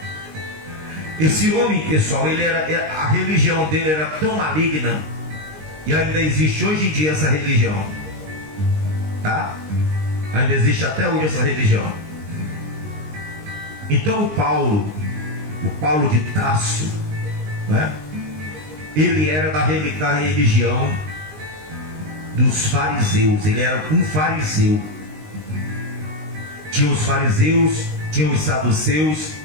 Esse homem, pessoal, a religião dele era tão maligna, e ainda existe hoje em dia essa religião, tá? Ainda existe até hoje essa religião. Então o Paulo de Tarso, né? Ele era da religião dos fariseus. Ele era um fariseu. Tinha os fariseus, tinha os saduceus,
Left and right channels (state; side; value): late; left; 19 ms